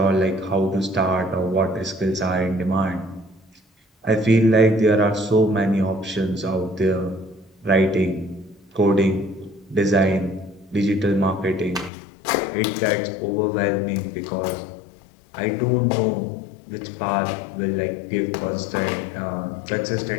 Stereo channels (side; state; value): right; drops out; at 11.9 s